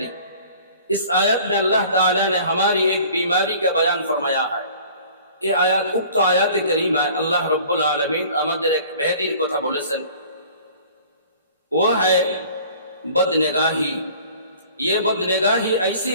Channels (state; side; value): inverted; both; correlation -0.49